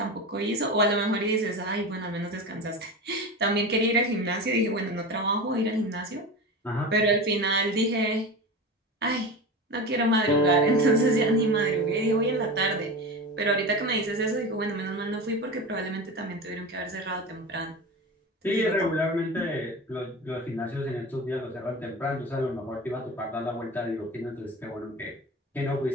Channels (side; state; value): both; normal; correlation 0.27